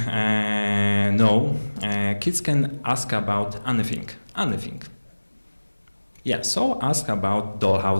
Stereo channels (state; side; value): inverted; both; correlation -1.00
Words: know, kids can ask about anything. Yeah, so ask about